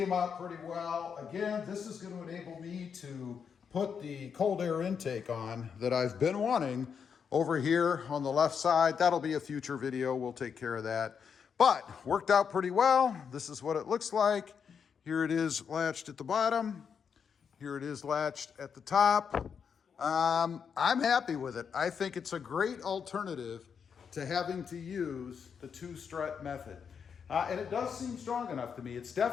out pretty well. Again, this is going to enable me to put the cold air intake on that I've been wanting over here on the left side. That'll be a future video. We'll take care of that. But worked out pretty well. This is what it looks like. Here it is latched at the bottom. Here it is latched at the top. I'm happy with it. I think it's a great alternative to having to use the 2-strut method. And it does seem strong enough to me. It's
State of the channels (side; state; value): right; quieter; 6.8 dB